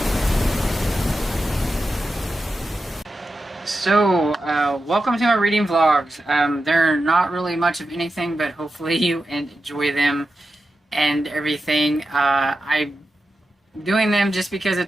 So, welcome to my reading vlogs. They're not really much of anything, but hopefully you enjoy them and everything. I'm doing them just because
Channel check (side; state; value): both; normal; correlation 0.90